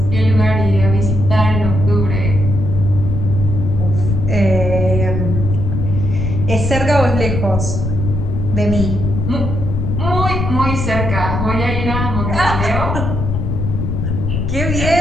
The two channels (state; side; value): noise; left; rumble, 2 dB below the sound